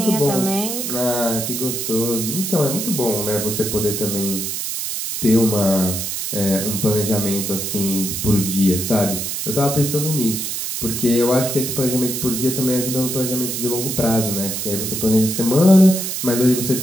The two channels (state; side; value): noise; right; hiss, 3 dB below the sound